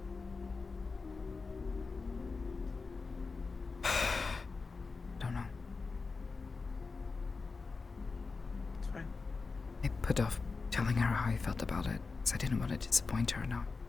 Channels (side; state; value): right; quieter; 4.3 dB